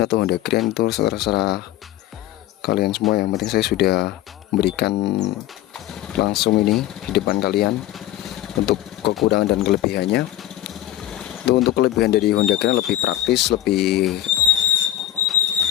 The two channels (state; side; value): quieter; right; 13.4 dB